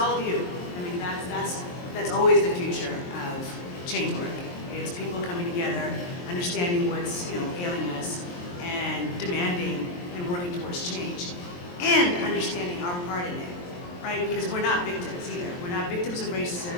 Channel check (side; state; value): right; late; 23 ms